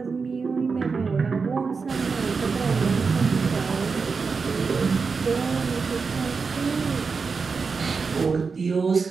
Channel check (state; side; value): quieter; left; 5.0 dB